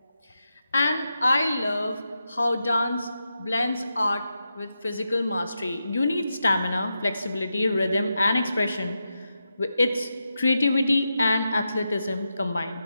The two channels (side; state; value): both; inverted; correlation -0.88